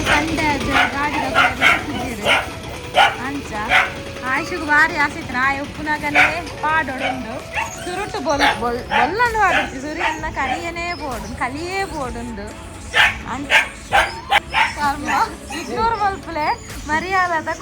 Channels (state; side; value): identical; both; correlation 1.00